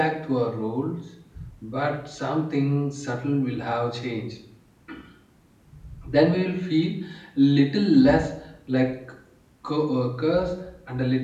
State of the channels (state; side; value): identical; both; correlation 1.00